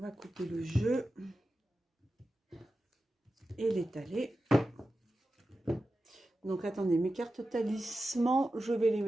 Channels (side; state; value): both; normal; correlation 0.92